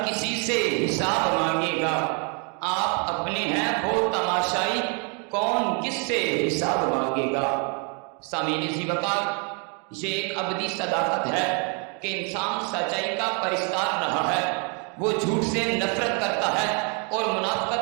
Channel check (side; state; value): left; quieter; 36.4 dB